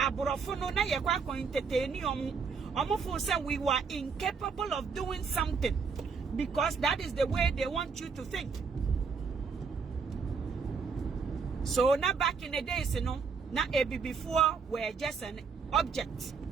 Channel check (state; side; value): quieter; left; 5.4 dB